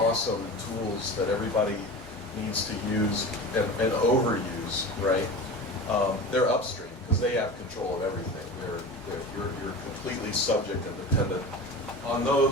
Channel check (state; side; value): normal; both; correlation 0.32